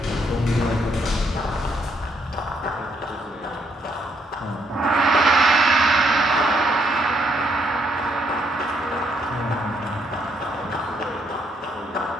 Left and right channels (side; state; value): both; normal; correlation 0.73